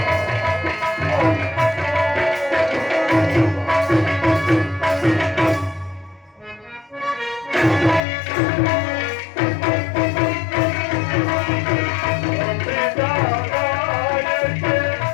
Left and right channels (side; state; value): right; drops out; at 8.0 s